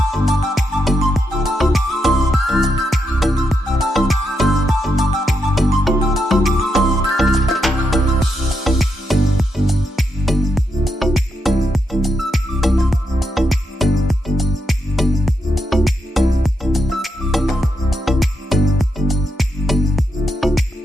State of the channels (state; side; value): normal; both; correlation 0.83